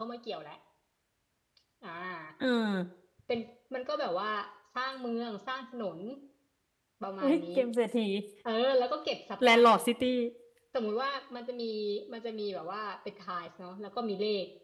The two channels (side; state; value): both; identical; correlation 1.00